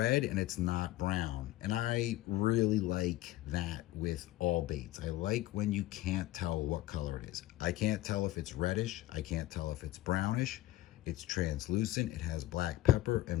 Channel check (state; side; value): quieter; right; 15.8 dB